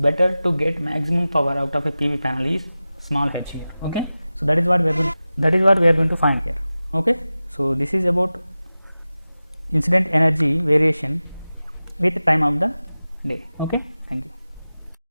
to get maximum power out of a PV panel is small h here. Okay, so that is what we are going to find here. Okay, so this is about incident energy variation with time of the day. Okay, thank you.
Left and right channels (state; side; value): inverted; both; correlation -0.95